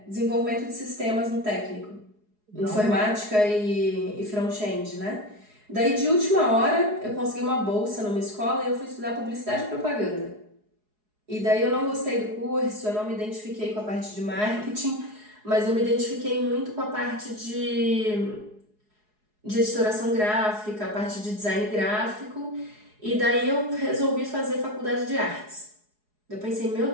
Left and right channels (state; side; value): late; left; 4.8 ms